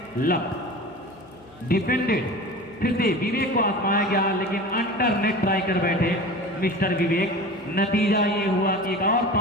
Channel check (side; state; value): left; noise; hum, 26 dB below the sound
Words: love, defended. फिर से विवेक को आजमाया गया, लेकिन अंडर नेट ट्राई कर बैठे मिस्टर विवेक। नतीजा ये हुआ कि एक और